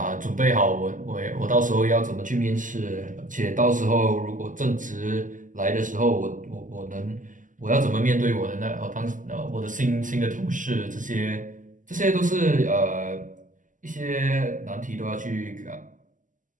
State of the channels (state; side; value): late; left; 0.38 ms